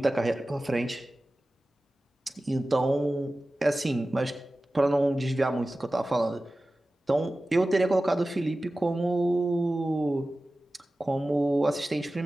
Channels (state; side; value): normal; both; correlation 0.96